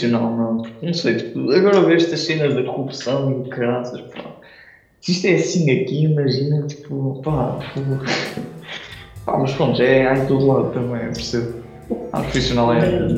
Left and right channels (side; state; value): both; identical; correlation 1.00